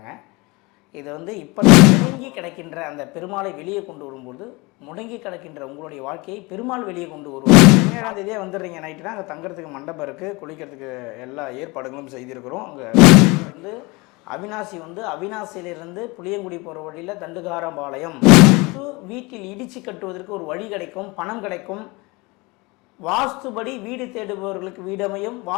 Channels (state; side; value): quieter; right; 25.1 dB